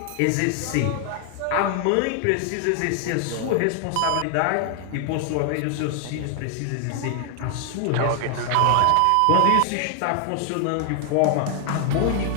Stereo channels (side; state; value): both; different; correlation 0.00